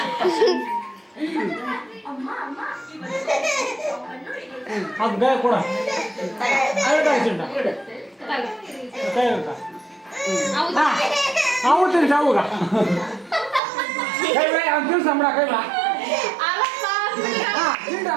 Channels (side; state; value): left; drops out; at 13.6 s